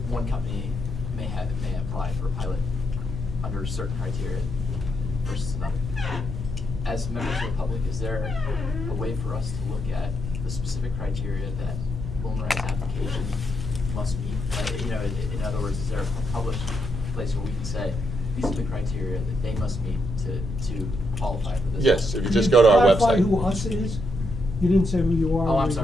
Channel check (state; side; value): normal; both; correlation 0.80